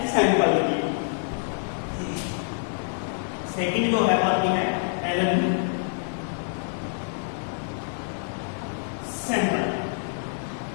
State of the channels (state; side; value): silent; right; 60 dB below the other